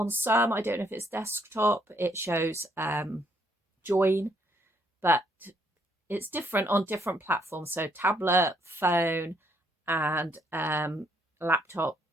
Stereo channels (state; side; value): normal; both; correlation 0.70